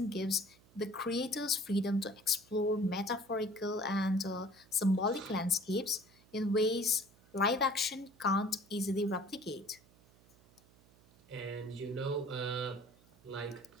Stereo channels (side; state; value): right; noise; hum, 28 dB below the sound